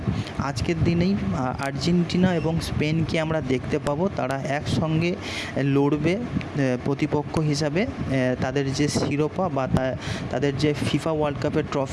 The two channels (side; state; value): both; identical; correlation 1.00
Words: আজকের দিনেই আর্জেন্টিনা এবং স্পেনকে আমরা দেখতে পাবো, তারা একসঙ্গে লড়বে প্রতিপক্ষ হিসাবে তাদের যে শিরোপা বা তাদের যে ফিফা ওয়ার্ল্ড কাপের